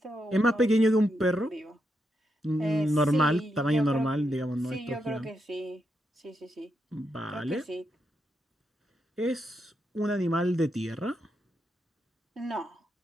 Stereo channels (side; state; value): both; normal; correlation 0.83